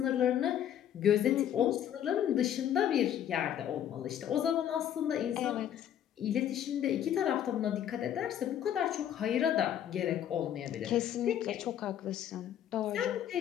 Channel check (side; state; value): right; quieter; 10.3 dB